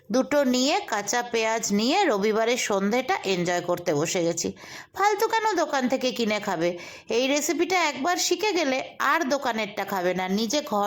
দুটো নিয়ে কাঁচা পেঁয়াজ নিয়ে রবিবারের সন্ধেটা এনজয় করতে বসে গেছি। ফালতু কেন দোকান থেকে কিনে খাবে? এই রেসিপিটা একবার শিখে গেলে আর দোকানেরটা খাবে না, নিজে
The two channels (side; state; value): both; identical; correlation 1.00